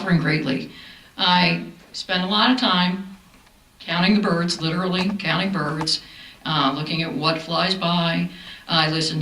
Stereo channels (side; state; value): both; identical; correlation 1.00